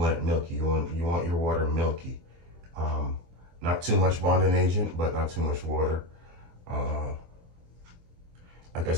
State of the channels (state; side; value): late; left; 23 ms